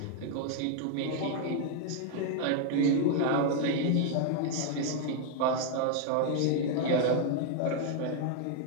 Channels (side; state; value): both; different; correlation 0.00